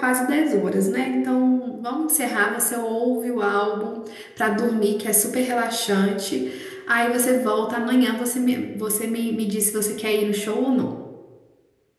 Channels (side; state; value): both; identical; correlation 1.00